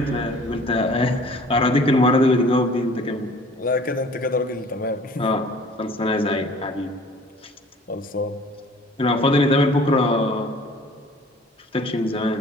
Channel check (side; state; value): both; normal; correlation 0.50